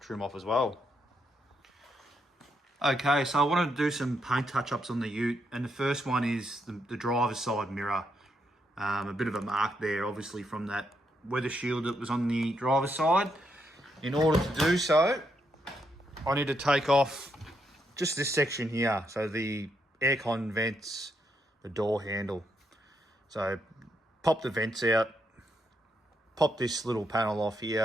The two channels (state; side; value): normal; both; correlation 0.79